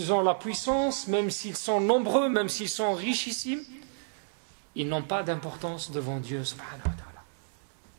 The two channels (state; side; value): silent; left; digital silence